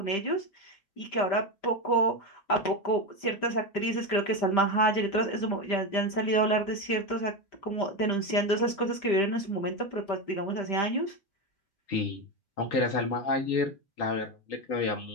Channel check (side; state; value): right; late; 5.1 ms